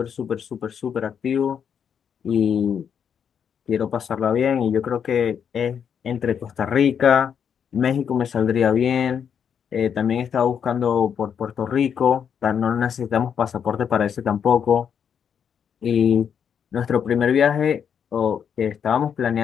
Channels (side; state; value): right; quieter; 7.8 dB